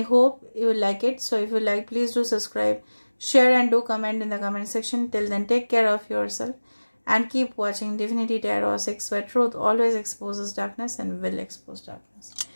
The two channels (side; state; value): both; inverted; correlation -1.00